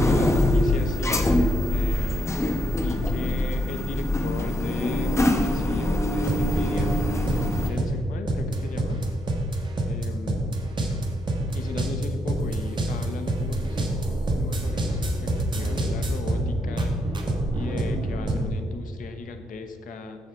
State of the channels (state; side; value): normal; both; correlation 0.79